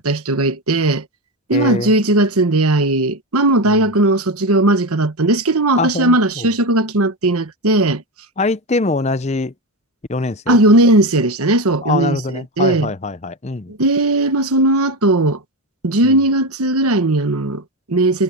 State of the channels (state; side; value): normal; both; correlation 0.16